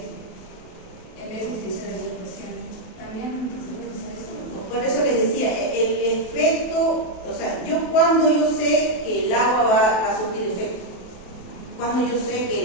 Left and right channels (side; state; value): right; late; 28 ms